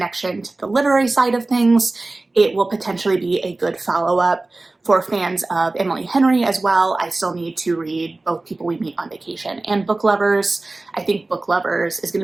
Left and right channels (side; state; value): left; quieter; 3.1 dB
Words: to the literary side of things, it will potentially be a good follow-up for fans of Emily Henry as well. I still need to read both People We Meet on Vacation and Book Lovers. I think Book Lovers is